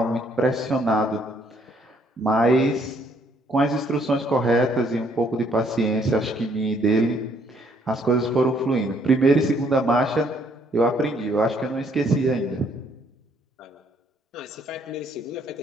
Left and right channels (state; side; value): normal; both; correlation 0.66